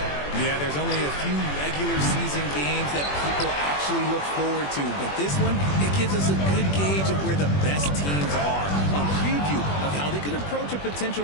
Yeah, there's only a few regular season games that people actually look forward to. But this one, it gives us a good gauge of where the best teams are. A preview of how they could approach a potential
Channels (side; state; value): right; late; 21 ms